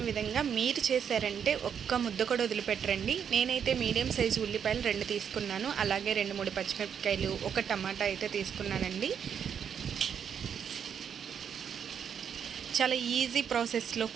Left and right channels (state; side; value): quieter; left; 7.8 dB